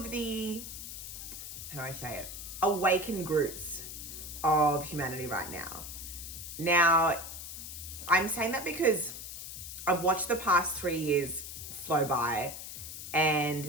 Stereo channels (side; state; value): left; noise; hiss, 9 dB below the sound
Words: the, how do I say it, awakened groups of humanity right now. Now, I'm saying that because I've watched the past 3 years flow by and